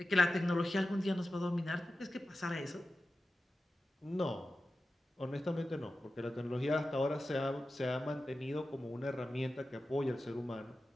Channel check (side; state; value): both; normal; correlation 0.93